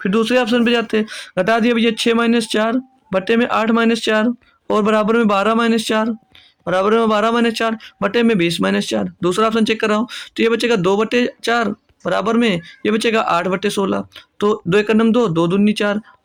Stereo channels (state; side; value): identical; both; correlation 1.00